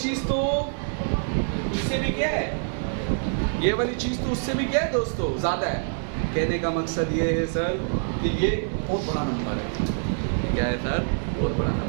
तो उससे भी क्या है? ये वाली चीज़ तो उससे भी क्या है दोस्तों? ज़्यादा है। कहने का मकसद ये है सर कि ये बहुत बड़ा नंबर है। क्या है सर? बहुत बड़ा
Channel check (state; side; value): silent; left; 61 dB below the other